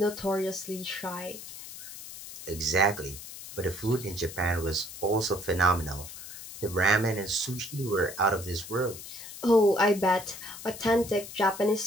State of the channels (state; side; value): noise; left; hiss, 13 dB below the sound